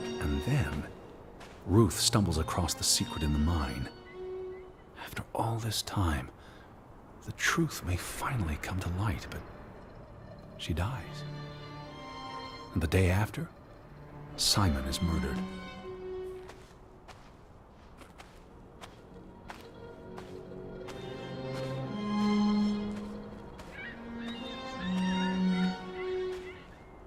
And then, Ruth stumbles across the secret in the mine. After all this time, the truth may finally come to light, but she dies. And the day after, Simon is murdered.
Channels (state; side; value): identical; both; correlation 1.00